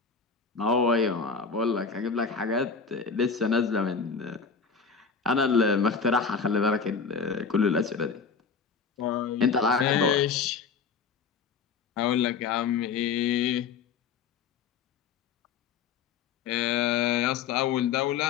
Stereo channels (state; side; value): quieter; right; 5.7 dB